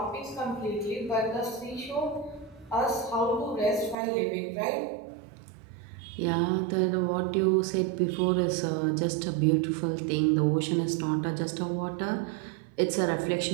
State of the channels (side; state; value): left; drops out; at 4.0 s